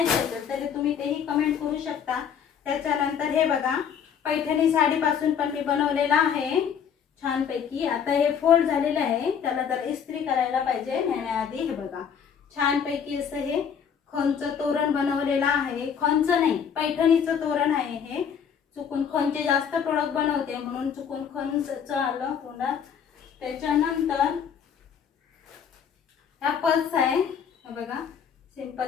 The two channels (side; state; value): right; quieter; 7.6 dB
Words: असेल तर तुम्ही तेही कमेंट करू शकता. त्याच्यानंतर हे बघा, पैठणी साडी पासून पण मी बनवलेला आहे छानपैकी. आता हे फोल्ड झालेलं आहे, त्याला जर इस्त्री करायला पाहिजे नेण्याआधी. हे बघा, छानपैकी असं हे खणचं तोरण बनवलेलं आहे. खणचं नाही, पैठणीचं तोरण आहे हे. चुकून खणचे जास्त प्रोडक्ट बनवते म्हणून चुकून खणचं आलं तोंडात. त्याच्यानंतर ह्या पर्स आहे. हे बघा,